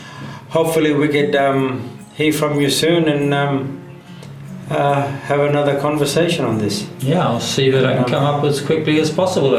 hopefully we could hear from you soon and have another conversation on this. I'll see that I can come up as quickly as possible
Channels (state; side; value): identical; both; correlation 1.00